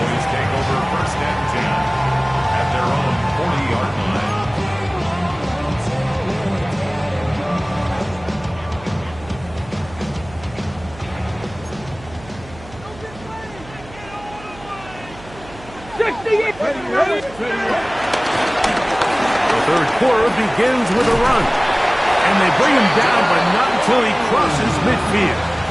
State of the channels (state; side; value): noise; right; hum, 19 dB below the sound